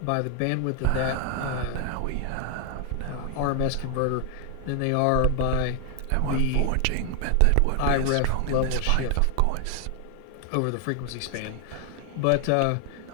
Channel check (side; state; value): both; different; correlation 0.00